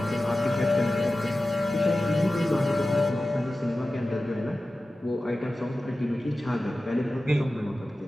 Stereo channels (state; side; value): normal; both; correlation 0.95